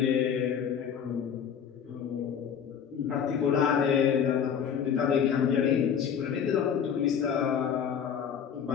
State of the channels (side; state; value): right; quieter; 7.9 dB